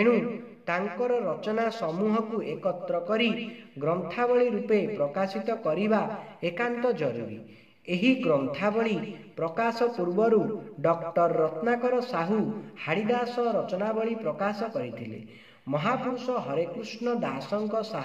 तांकर रचना समूह को एकत्र करी ग्रंथावली रूपे प्रकाशित करिबा एकांत जरूरी। एही ग्रंथावली प्रकाश पूर्वरु डॉक्टर रत्नाकर साहू हाड़ीदास रचनावली प्रकाश करिथिले। महापुरुष हरेकृष्ण दासଙ୍କ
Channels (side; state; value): both; identical; correlation 1.00